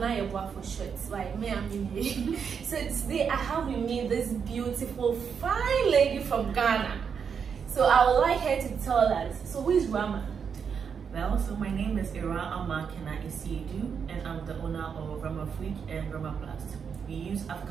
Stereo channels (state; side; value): quieter; left; 6.7 dB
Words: Yeboah for short. Like me, I'm in. So today I have with me this beautiful, fine lady from Ghana. So I would like her to tell us. So who is Rama? Well, so my name is Awurama Kena-Asiedu, and I'm the owner of Ramaplast and Ramaplast. We use